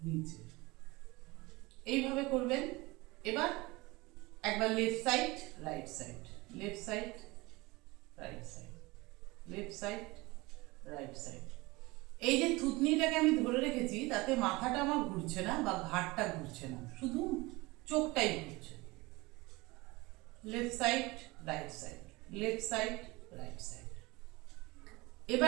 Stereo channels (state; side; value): quieter; left; 22.7 dB